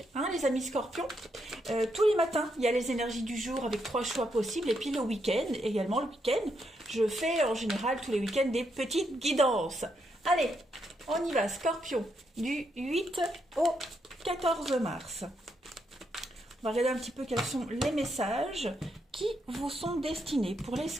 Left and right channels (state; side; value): normal; both; correlation 0.79